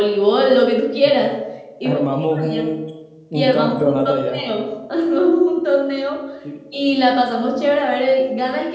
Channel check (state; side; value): identical; both; correlation 1.00